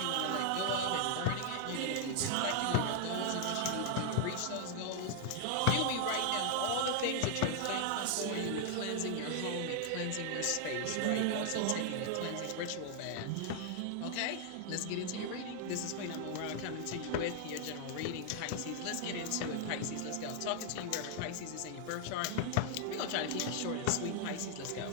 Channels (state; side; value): different; both; correlation 0.00